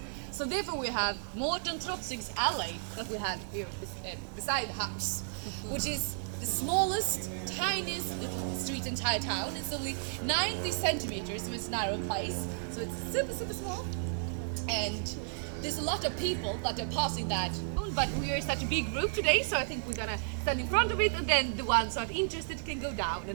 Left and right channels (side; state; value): left; silent; digital silence